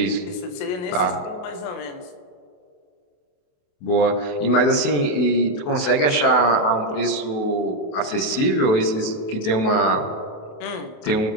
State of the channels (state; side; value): late; right; 28 ms